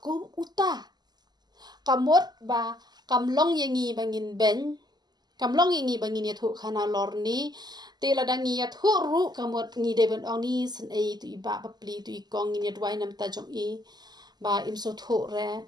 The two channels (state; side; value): late; left; 0.20 ms